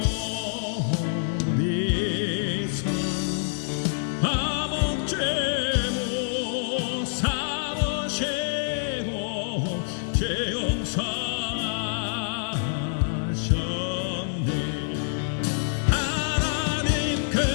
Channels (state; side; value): silent; right; digital silence